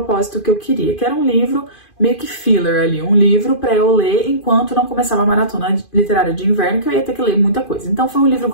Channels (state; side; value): late; right; 2.5 ms